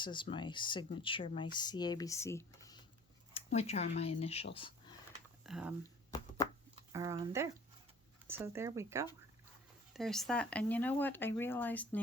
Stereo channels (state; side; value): normal; both; correlation 0.50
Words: is my signature, my CABC, which are my initials, are on there. So there we go. There's that. And you know what? I realized